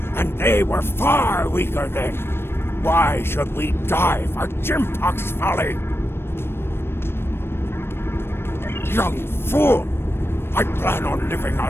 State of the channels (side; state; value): right; late; 0.12 ms